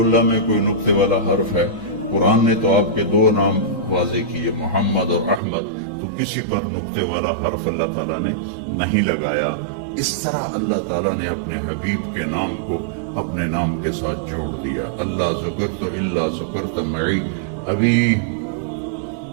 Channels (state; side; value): drops out; left; at 5.4 s